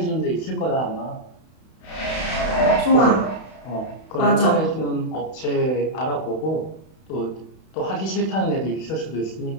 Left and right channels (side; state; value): right; late; 31 ms